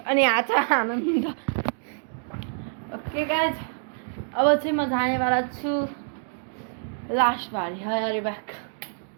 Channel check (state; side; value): silent; left; digital silence